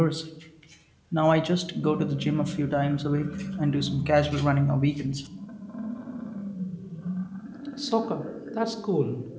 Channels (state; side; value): identical; both; correlation 1.00